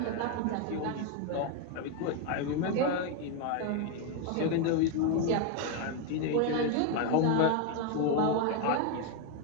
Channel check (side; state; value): both; different; correlation 0.01